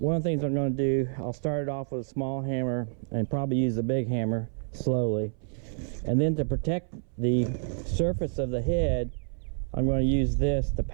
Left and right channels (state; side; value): silent; left; 59 dB below the other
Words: one of the things I'm going to do, I'll start it off with a small hammer and probably use the big hammer slowly, and then to protect the surface of the head, I'm going to use this to